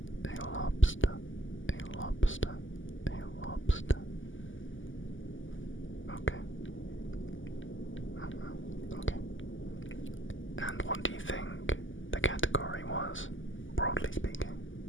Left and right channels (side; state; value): right; late; 0.57 ms